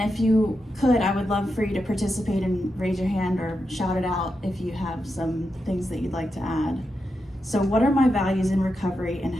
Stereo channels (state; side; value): normal; both; correlation 0.87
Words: if you could, I would love for you to participate and raise your hand or shout it out if you have some things that you'd like to add. So what are my values in recovery and